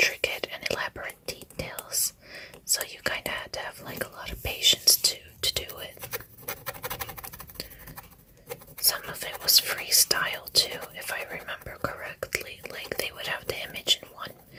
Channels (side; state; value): both; identical; correlation 1.00